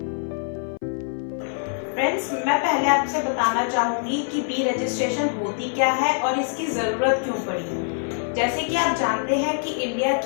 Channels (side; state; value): right; silent; 58 dB below the other